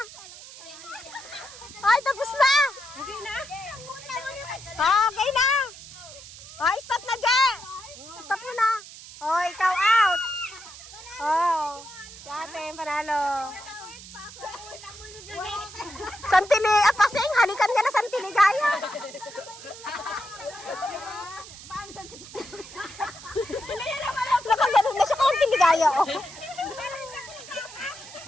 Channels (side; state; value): right; noise; hiss, 16 dB below the sound